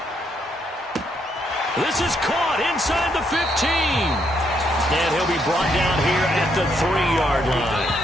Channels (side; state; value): both; normal; correlation 0.75